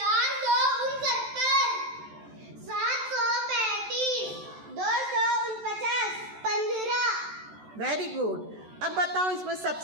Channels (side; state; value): left; late; 14 ms